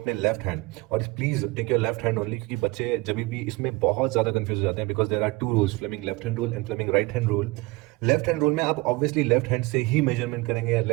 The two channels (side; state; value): left; quieter; 23.1 dB